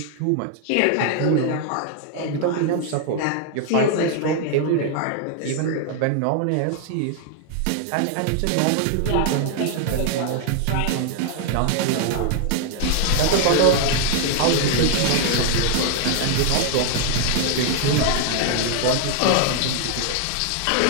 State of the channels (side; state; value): both; different; correlation 0.00